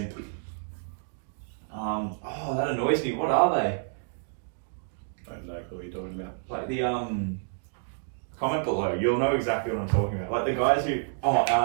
Oh, that annoys me. What are they? I don't know what you're talking about. Like the comment below. You'll know exactly what I'm talking about. Like the guys who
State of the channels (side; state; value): left; silent; digital silence